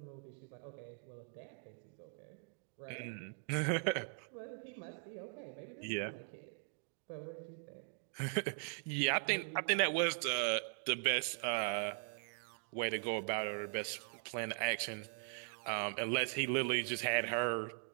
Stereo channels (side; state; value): left; silent; 51 dB below the other